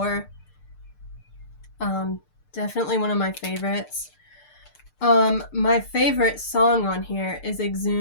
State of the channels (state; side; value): late; right; 6.7 ms